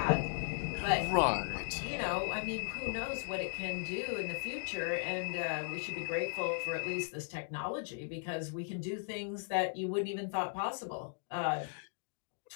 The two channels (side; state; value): right; silent; digital silence